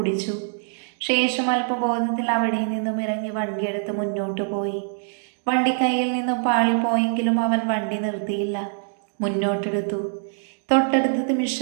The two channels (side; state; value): left; silent; digital silence